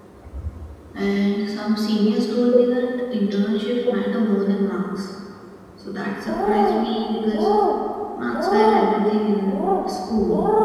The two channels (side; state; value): both; identical; correlation 1.00